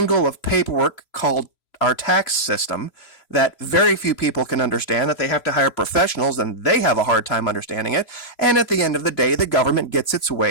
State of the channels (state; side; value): late; right; 3.0 ms